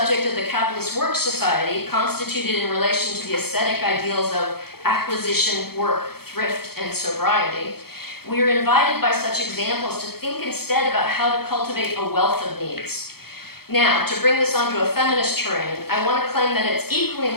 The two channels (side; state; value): right; late; 0.95 ms